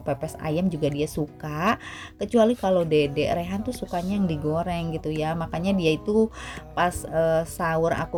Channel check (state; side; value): identical; both; correlation 1.00